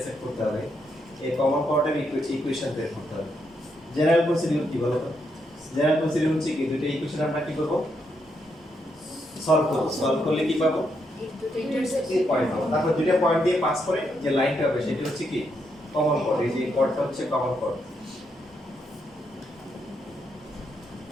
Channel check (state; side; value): normal; both; correlation 0.79